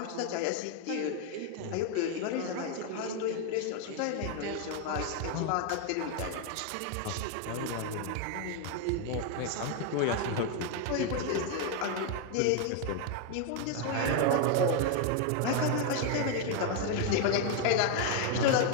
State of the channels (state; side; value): different; both; correlation 0.01